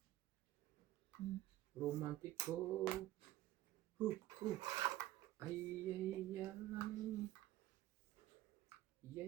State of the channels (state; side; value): quieter; left; 15.0 dB